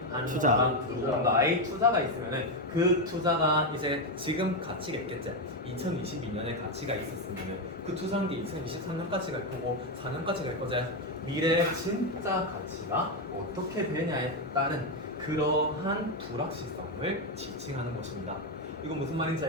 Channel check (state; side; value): normal; both; correlation 0.07